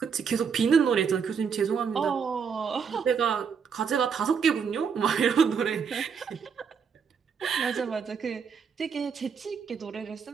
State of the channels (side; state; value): left; quieter; 6.4 dB